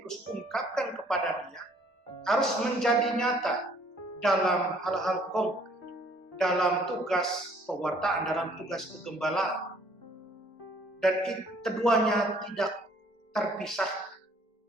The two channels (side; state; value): both; normal; correlation 0.60